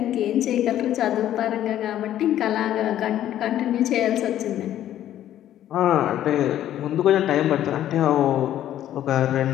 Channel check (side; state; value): right; quieter; 12.0 dB